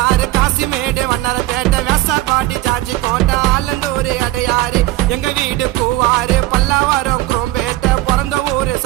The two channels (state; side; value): quieter; left; 16.8 dB